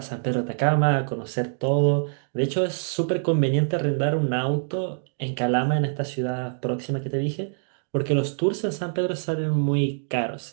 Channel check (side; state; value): left; silent; digital silence